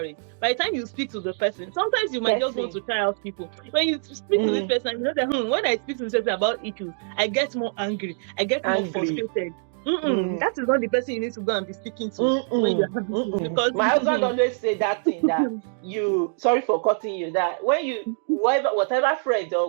by the time you speak to the person, sometimes you might just want to try out people. When you speak to this person, you know that when I speak to this person about issues, I get more angry, I get more frustrated. That is not the person you need to go and be speaking to when you're having issues. Because my husband always say that thing that sorry for cutting you, that when you whatever friend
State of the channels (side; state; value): left; silent; digital silence